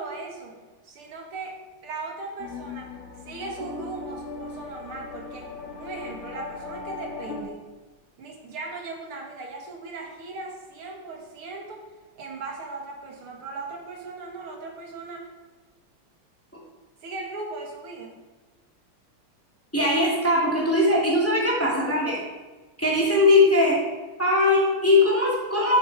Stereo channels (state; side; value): normal; both; correlation -0.15